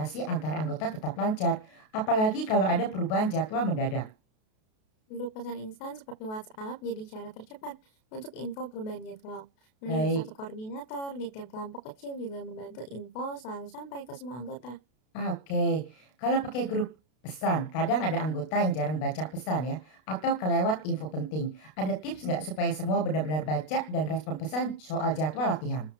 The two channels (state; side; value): late; right; 32 ms